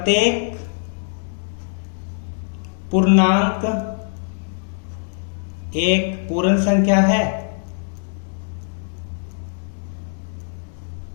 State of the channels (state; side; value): silent; right; digital silence